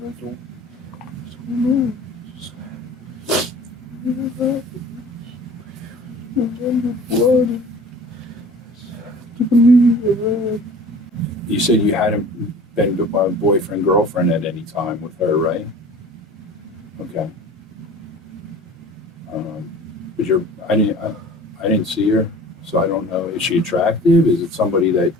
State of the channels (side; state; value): both; normal; correlation 0.44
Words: I don't know. Just what happened. Remember blood. And to believe I read. You said you hadn't been boyfriend, girlfriend at any time with her, right? Okay. But I didn't see her, so I don't know. Is she attractive? Is it somebody that?